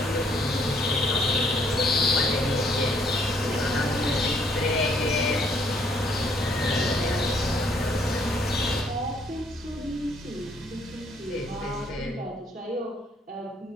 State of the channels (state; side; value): normal; both; correlation 0.66